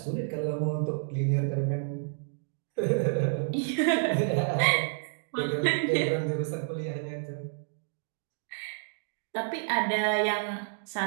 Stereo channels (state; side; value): silent; left; digital silence